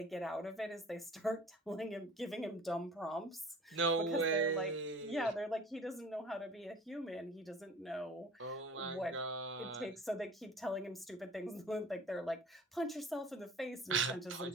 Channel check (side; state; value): both; normal; correlation 0.44